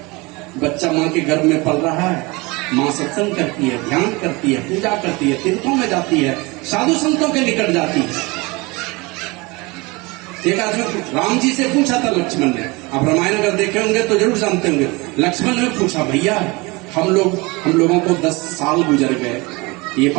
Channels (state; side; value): quieter; left; 25.0 dB